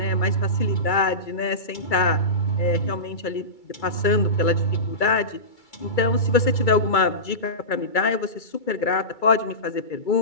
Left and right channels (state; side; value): late; right; 2.3 ms